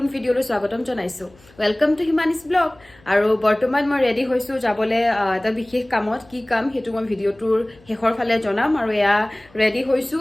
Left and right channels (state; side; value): noise; left; hum, 28 dB below the sound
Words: ভিডিওলৈ স্বাগতম জনাইছো ওয়েলকাম টু হিমানিস ব্লগ আৰু বৰ্তমান মই ৰেডি হৈছো যাবলৈ এটা বিশেষ কামত কি কাম হেতু মই ভিডিওটোৰ শেষৰ ফালে জনাম আৰু এয়া ৰেডি হৈছো